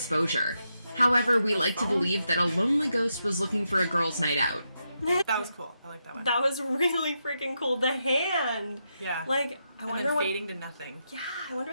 However, we like to believe that a lonely ghost was looking for a girl's night out. That was cool. I like that one. That was really freaking cool. The hand. Yeah. Like, I and wonder then what. fading to nothing. Yeah, I wonder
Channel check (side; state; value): both; inverted; correlation -0.84